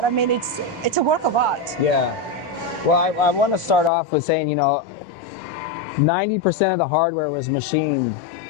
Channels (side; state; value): right; drops out; at 3.9 s